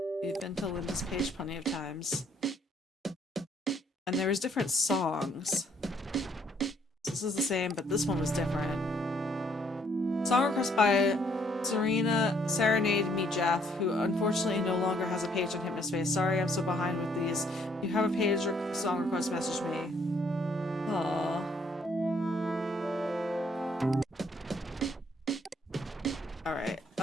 We've been to Linda's page plenty of times. And there was different songs. This is the same, but this one was different. Song request by Serena Serenade Me Jeff, who unfortunately no longer has a page on Hypnospace. Sorry, I'm so behind with these. If you have a page or song request, message me. Aww. Alright,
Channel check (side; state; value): both; normal; correlation 0.67